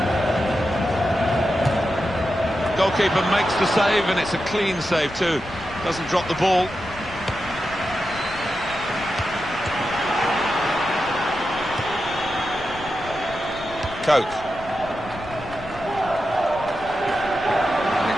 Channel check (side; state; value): left; noise; rumble, 16 dB below the sound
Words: Goalkeeper makes the save, and it's a clean save too. Doesn't drop the ball. Coke.